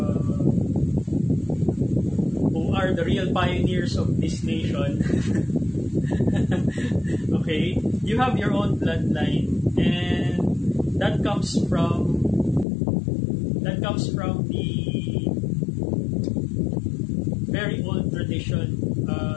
who are the real pioneers of this nation. Okay, you have your own bloodline, and that comes from the very old tradition,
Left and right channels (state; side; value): drops out; right; at 12.7 s